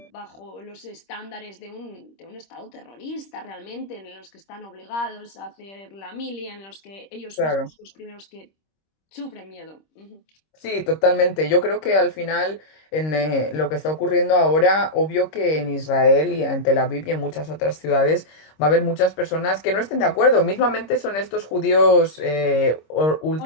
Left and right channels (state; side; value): late; right; 26 ms